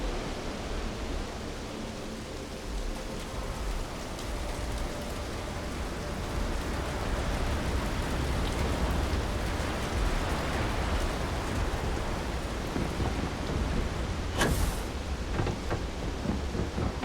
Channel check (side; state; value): both; identical; correlation 1.00